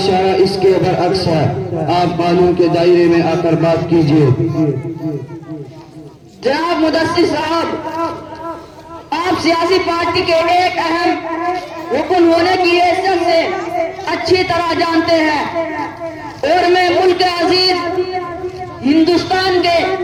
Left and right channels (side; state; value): both; identical; correlation 1.00